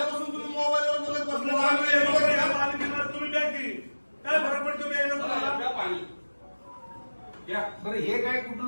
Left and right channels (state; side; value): inverted; both; correlation -1.00